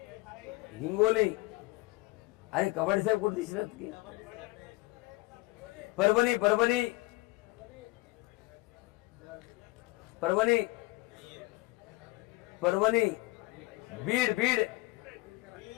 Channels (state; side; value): quieter; right; 21.7 dB